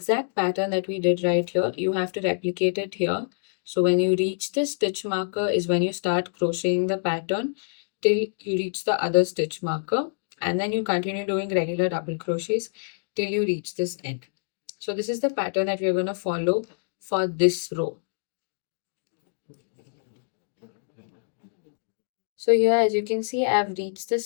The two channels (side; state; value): right; silent; digital silence